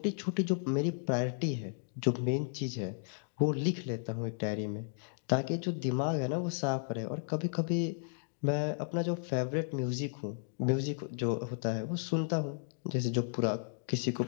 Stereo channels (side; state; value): right; silent; digital silence